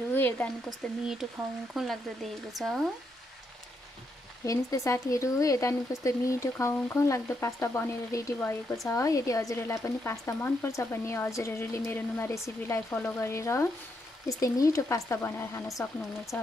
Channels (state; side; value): normal; both; correlation 0.79